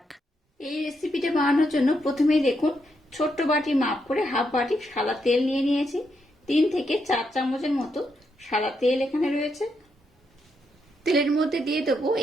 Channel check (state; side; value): normal; both; correlation 0.80